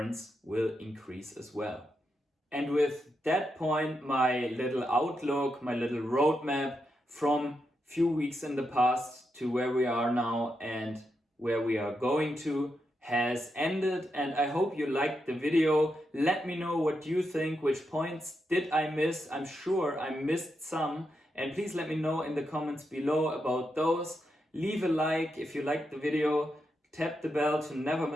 will increase as well. And with that point, my little outlook, my little roadmap from few weeks in the past to where we are now and where we are going to has ended, and I hope you liked the video. Let me know what you think, which points did I miss. I'm sure I missed some, and please let me know in the comments below about those. Leave a like if you liked the video, tap the bell to never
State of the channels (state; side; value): normal; both; correlation 0.84